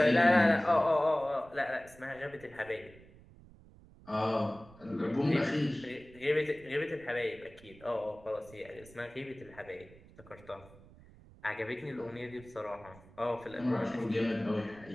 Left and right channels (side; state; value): right; noise; rumble, 22 dB below the sound